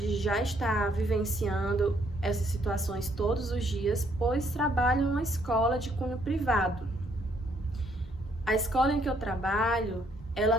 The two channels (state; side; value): normal; both; correlation 0.68